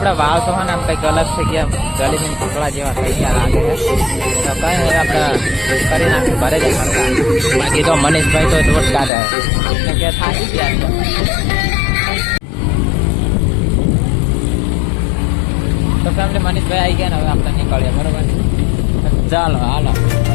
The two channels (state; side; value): drops out; right; at 9.1 s